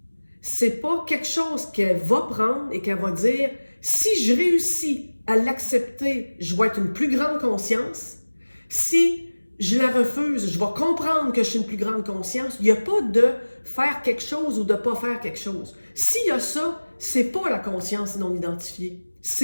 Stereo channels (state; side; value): inverted; both; correlation -1.00